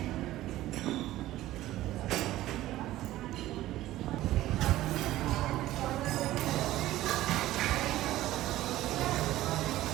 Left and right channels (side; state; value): left; quieter; 15.3 dB